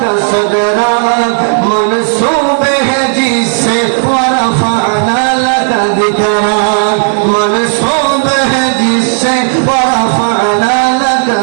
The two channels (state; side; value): silent; left; 75 dB below the other